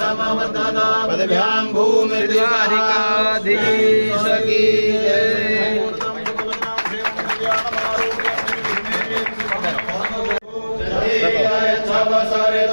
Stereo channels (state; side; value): inverted; both; correlation -1.00